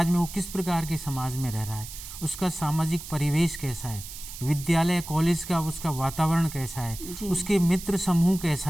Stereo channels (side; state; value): right; noise; hiss, 12 dB below the sound